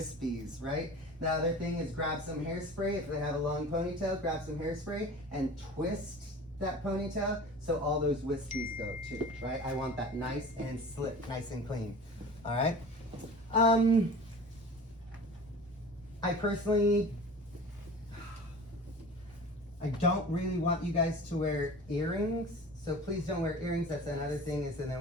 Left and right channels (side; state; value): both; normal; correlation 0.39